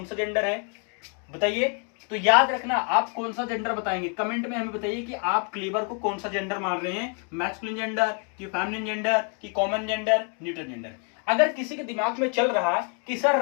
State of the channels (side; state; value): right; quieter; 37.6 dB